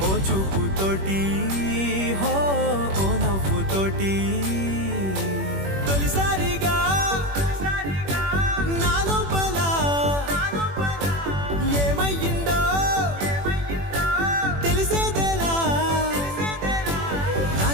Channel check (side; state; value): left; late; 21 ms